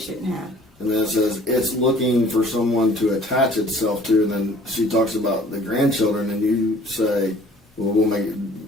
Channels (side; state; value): both; normal; correlation 0.52